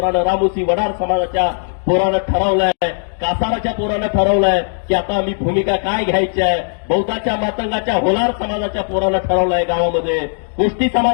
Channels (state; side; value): silent; right; digital silence